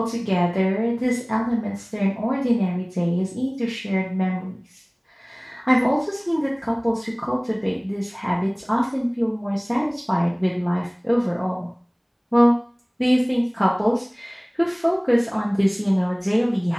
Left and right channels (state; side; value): identical; both; correlation 1.00